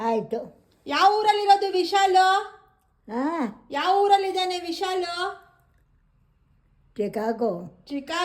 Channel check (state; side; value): identical; both; correlation 1.00